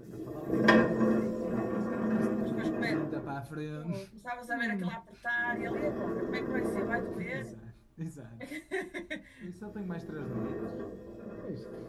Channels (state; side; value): identical; both; correlation 1.00